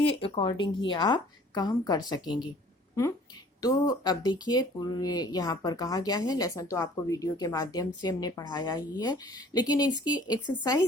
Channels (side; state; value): both; normal; correlation 0.53